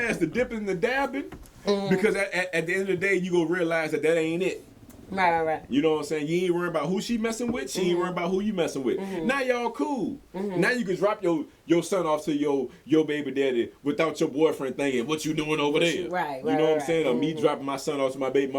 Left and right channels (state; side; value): identical; both; correlation 1.00